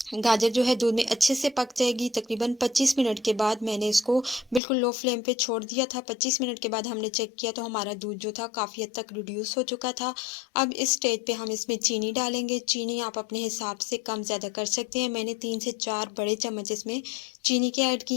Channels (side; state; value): right; drops out; at 4.6 s